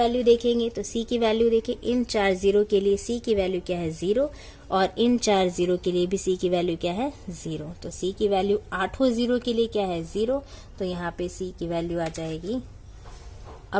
देखेंगे। तो c की वैल्यू देखिए, इन 4 0 के लिए c की वैल्यू क्या है, 0, और इन 4 0 के लिए भी c की वैल्यू क्या है, 0। तो c की वैल्यू 8 0 के लिए क्या है, 0, तो यहाँ पे c की वैल्यू आ जाएगी।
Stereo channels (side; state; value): both; identical; correlation 1.00